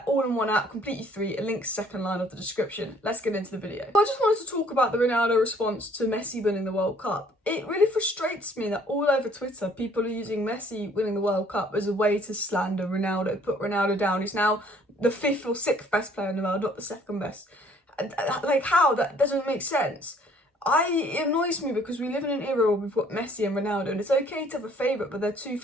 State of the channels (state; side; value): normal; both; correlation 0.59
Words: all in one app, completely free. A link's second line of the description. Let's get into the video. I just wanted to talk about the Ronaldo response to Messi winning the World Cup. It really frustrates me that all over Twitter, people are using Messi winning the World Cup as a way to slander Ronaldo, put Ronaldo down. He's now the fifth or sixth best player in the world, not the second best. Like, how? That doesn't make sense. It annoys me because we live in an era where we've got Messi and Ronaldo, and it's okay to have a favourite, but they're two